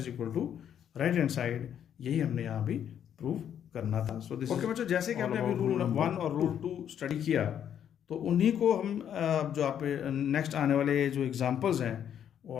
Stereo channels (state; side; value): quieter; right; 9.3 dB